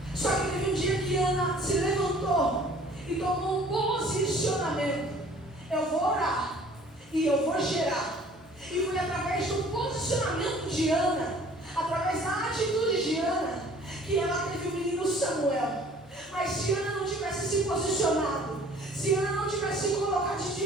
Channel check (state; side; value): normal; both; correlation 0.52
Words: Só que teve um dia que Ana se levantou e tomou um posicionamento. Eu vou orar e eu vou gerar. E foi através do posicionamento de Ana, através da atitude de Ana, que ela teve o menino Samuel. Mas se Ana não tivesse se posicionado, se Ana não tivesse se colocado